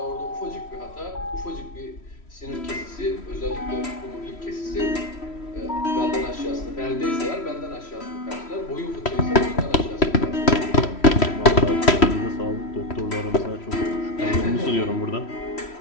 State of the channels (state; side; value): late; right; 3.1 ms